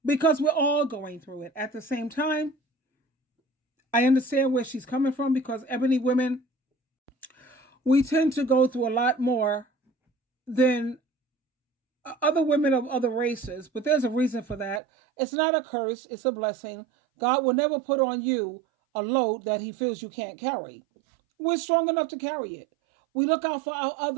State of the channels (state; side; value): drops out; left; at 14.8 s